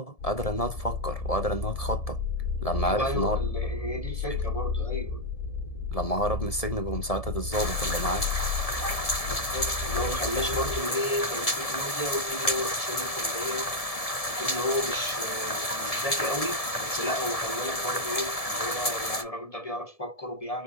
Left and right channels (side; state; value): right; late; 1.7 ms